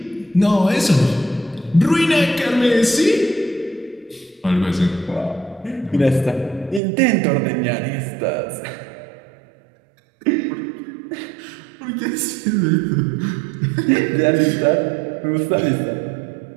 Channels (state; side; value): drops out; left; at 6.8 s